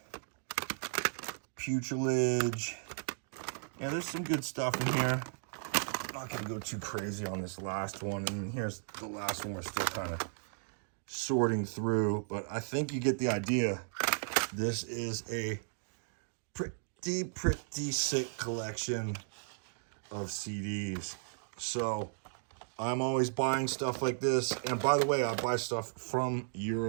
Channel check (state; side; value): silent; left; digital silence